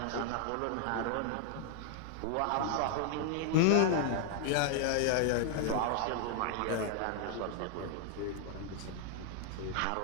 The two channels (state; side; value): different; both; correlation 0.00